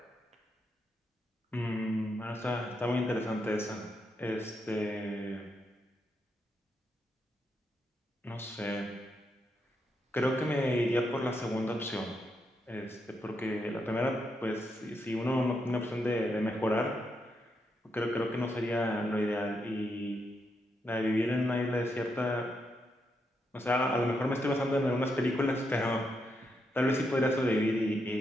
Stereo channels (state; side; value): normal; both; correlation 0.81